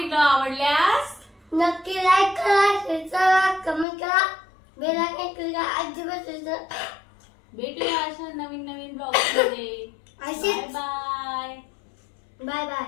आवडल्यास नक्की लाईक करा, शेअर करा, कमेंट करा, बेल आयकॉन क्लिक करा. अजिबात भेटूया अशा नवीन नवीन ब्लॉग मध्ये. Bye bye. Bye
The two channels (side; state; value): right; drops out; at 3.9 s